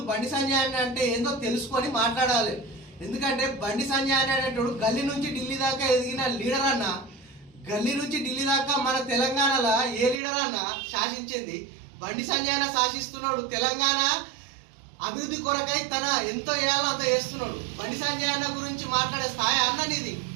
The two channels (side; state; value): left; drops out; at 10.2 s